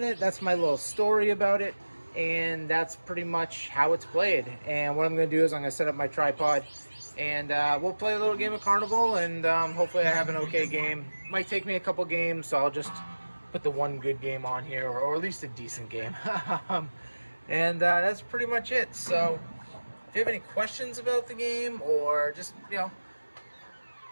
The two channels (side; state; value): both; inverted; correlation -1.00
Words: That's my little story about it. And that's pretty much how it's played. And what I'm going to do is I'm going to set up my tripod, and we'll play a little game of Carnival, and hopefully I have an okay game. Might take me a couple games, so I'll just put the one good game on here, or at least a decent game. And that's pretty much it. So if you have any questions about the game, or just,